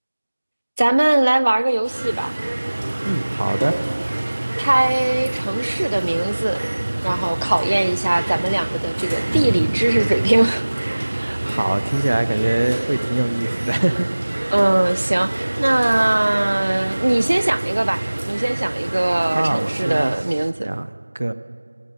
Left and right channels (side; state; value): both; inverted; correlation -1.00